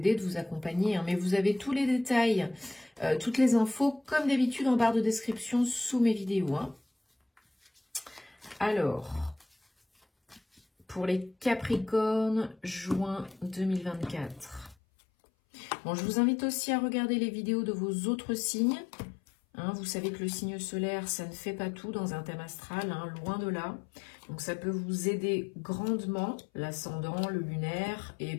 de vous accompagner, hein, mais vous avez tous les détails, toutes les infos, comme d'habitude, en barre de description sous mes vidéos. Hein. Alors, pour les Capricornes, juin 2024. Bon, je vous invite aussi à regarder les vidéos de vos autres signes. Hein, vous savez que le signe solaire, ça ne fait pas tout dans un thème astral, hein, loin de là. Donc ça peut vous aider grandement, l'ascendant, le lunaire et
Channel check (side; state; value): right; drops out; at 14.8 s